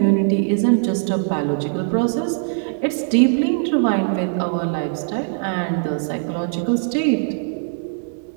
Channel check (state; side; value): silent; left; digital silence